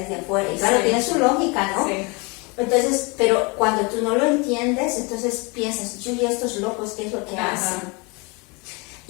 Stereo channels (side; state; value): right; quieter; 29.0 dB